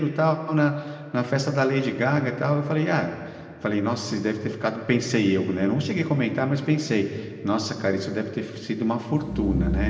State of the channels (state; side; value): identical; both; correlation 1.00